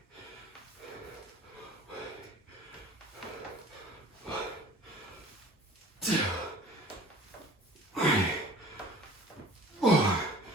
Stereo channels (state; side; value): normal; both; correlation 0.46